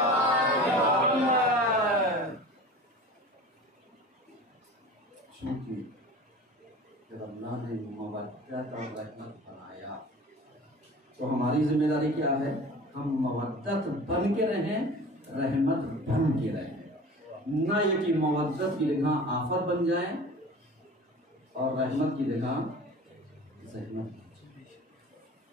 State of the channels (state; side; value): normal; both; correlation 0.39